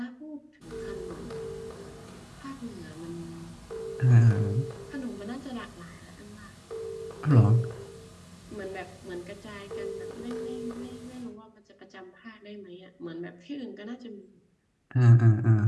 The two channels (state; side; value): identical; both; correlation 1.00